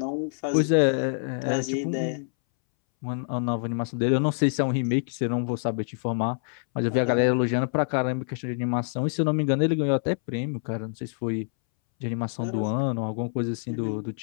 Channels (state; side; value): silent; right; 61 dB below the other